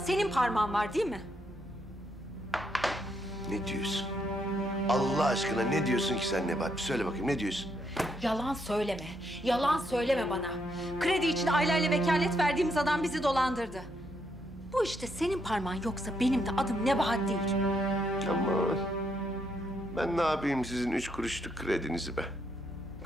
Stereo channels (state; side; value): normal; both; correlation 0.77